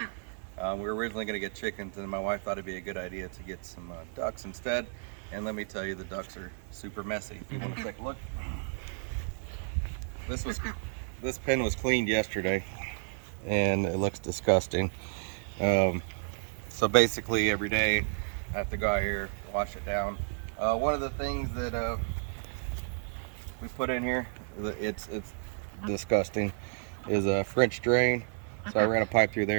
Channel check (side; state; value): left; silent; 57 dB below the other